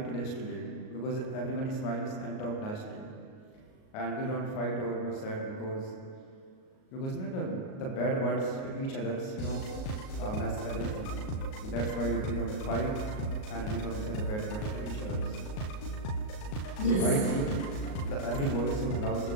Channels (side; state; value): right; late; 38 ms